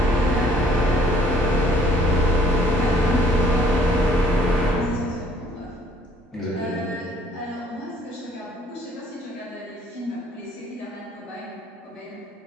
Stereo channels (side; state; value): both; normal; correlation 0.61